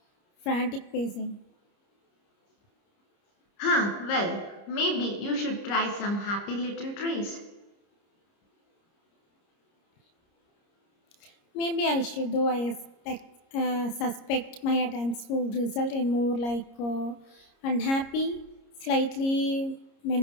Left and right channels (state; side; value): late; right; 30 ms